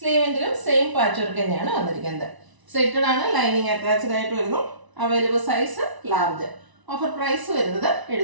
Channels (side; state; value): left; late; 1.0 ms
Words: സെയിം പാച്ച് വർക്ക് തന്നെയാണ് വന്നിരിക്കുന്നത്. സെറ്റഡ് ആണ്, ലൈനിങ് അറ്റാച്ച്ഡ് ആയിട്ട് വരുന്നു. Available size large. Offer price വരുന്നത്